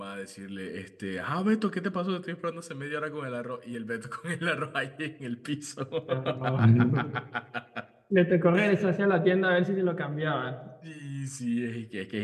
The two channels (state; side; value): identical; both; correlation 1.00